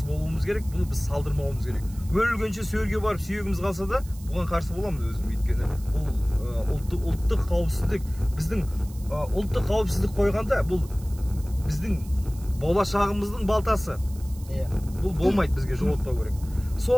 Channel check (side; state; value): right; noise; hiss, 21 dB below the sound